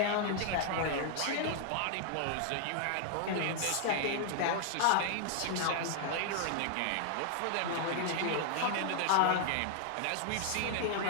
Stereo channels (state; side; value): different; both; correlation 0.00